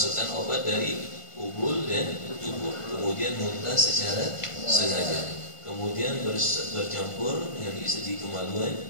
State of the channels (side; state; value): right; late; 1.5 ms